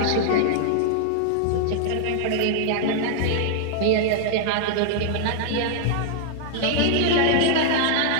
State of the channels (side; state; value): both; different; correlation -0.01